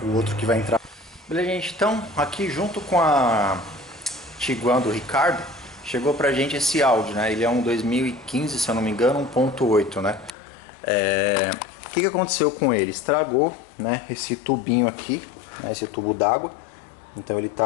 outro que vai entrar. Beleza, gente, então aqui junto com a Tiguan do Ricardo, chegou pra gente esse Audi, né? Ele é um 2015, se eu não me engano, 1.8, né? O que aconteceu com ele? Estragou, né, esse tubinho aqui, né, esse tubo d'água. Então ele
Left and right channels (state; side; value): drops out; right; at 10.3 s